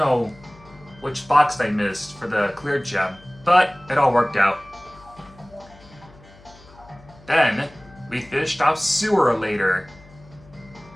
which box I missed for the clear gem, but it all worked out. Then, we finished off Sewer later.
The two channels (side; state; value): left; noise; hum, 24 dB below the sound